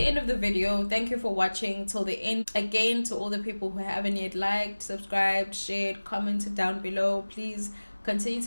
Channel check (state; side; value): inverted; both; correlation -1.00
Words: of the video. Thank you for watching till the end. Again, to all the people who haven't yet liked, subscribed, shared, commented down below, please continue